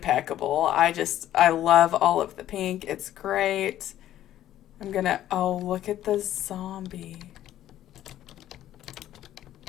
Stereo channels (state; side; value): quieter; right; 12.5 dB